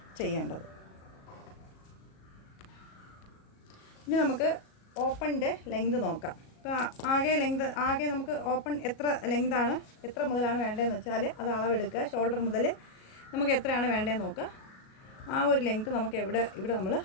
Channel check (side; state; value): right; late; 37 ms